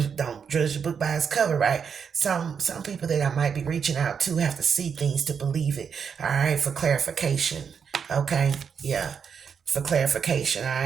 don't judge a book by its cover, right? Some people that I might be reaching out to have to see things to believe it. All right. For clarification. Okay. Yeah. For clarification, all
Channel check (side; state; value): left; quieter; 6.7 dB